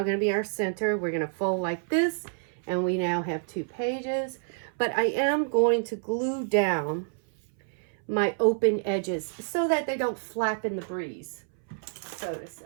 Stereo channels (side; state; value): left; silent; 59 dB below the other